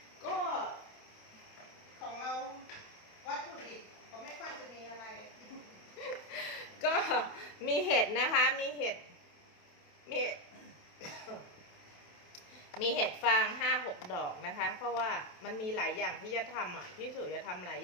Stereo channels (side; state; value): right; late; 27 ms